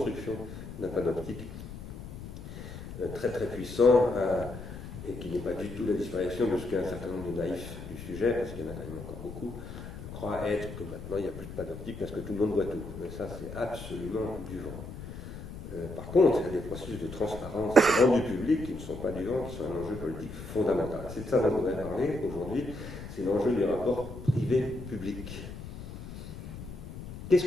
d'un panoptique très très puissant et qui n'est pas du tout la disparition de ce qu'un certain nombre de naïfs du sujet, parce qu'il y en a quand même encore beaucoup, croient être que maintenant il n'y a plus de panoptique parce que tout le monde voit tout. Mais ça, c'est absolument du vent. Par contre, il y a des processus de transparence rendus publics qui ne sont pas du vent, qui sont un enjeu politique fondamental. C'est de ça dont on voudrait parler aujourd'hui, c'est l'enjeu du rapport privé-public. Qu'est-ce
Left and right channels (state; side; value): noise; left; rumble, 11 dB below the sound